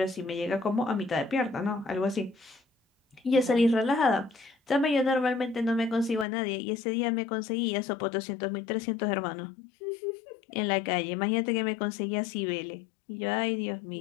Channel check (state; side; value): drops out; right; at 6.2 s